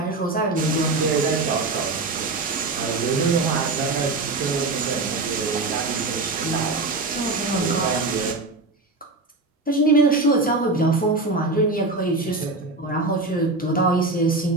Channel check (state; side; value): quieter; left; 3.3 dB